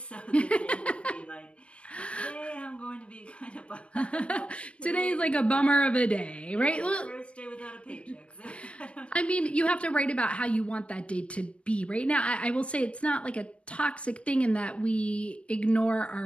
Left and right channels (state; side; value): late; right; 0.061 ms